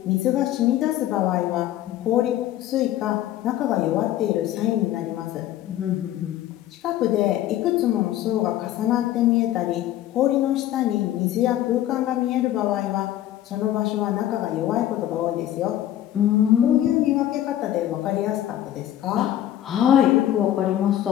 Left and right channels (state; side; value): quieter; right; 12.6 dB